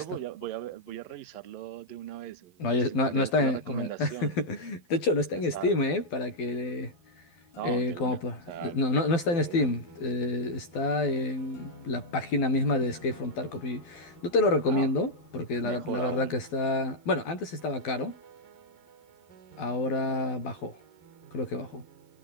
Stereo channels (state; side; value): late; right; 12 ms